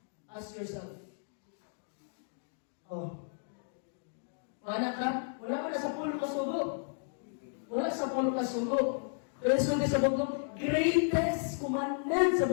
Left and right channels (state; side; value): silent; right; digital silence